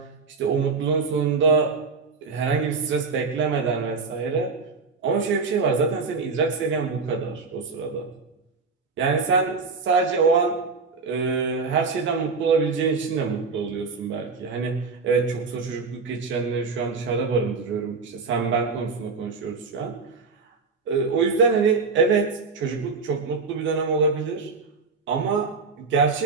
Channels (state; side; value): quieter; left; 4.6 dB